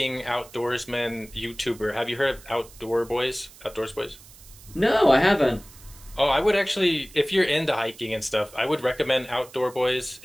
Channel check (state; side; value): noise; right; hiss, 21 dB below the sound